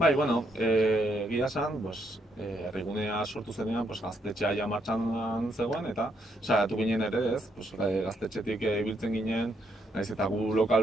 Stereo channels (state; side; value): normal; both; correlation 0.75